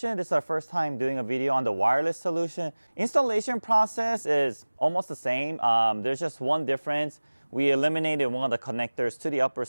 This is our first time doing a video on the wireless solution. Installation process is almost the same. There's just one difference. We eliminated one of the connectors to the upper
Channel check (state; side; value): inverted; both; correlation -1.00